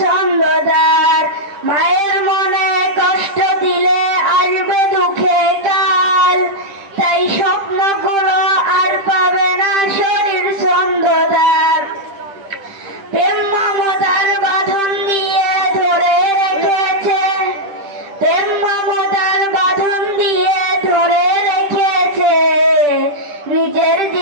ছন্দদার। মায়ের মনে কষ্ট দিলে আসবে দুঃখে কাল, তাই স্বপ্নগুলো আর পাবে না শরীর ছন্দদার। প্রেম মমতার বাঁধন দিয়ে ধরে রেখেছে, প্রেম মমতার বাঁধন দিয়ে ধরে রেখেছে। নিজের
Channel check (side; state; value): left; late; 10 ms